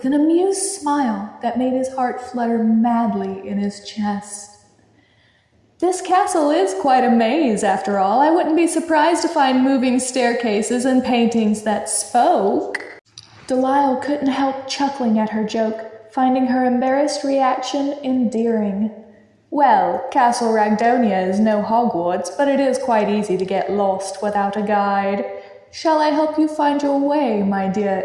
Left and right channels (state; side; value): identical; both; correlation 1.00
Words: an amused smile that made his heart flutter madly in his chest. "This castle is quite a maze, after all. I wouldn't be surprised to find moving staircases and paintings that spoke." Delial couldn't help chuckling at her joke, finding her embarrassed reaction endearing. "Well, Castle Ragdonia is no Hogwarts, but it is quite easy to get lost without a guide. Shall I help you find your way, my dear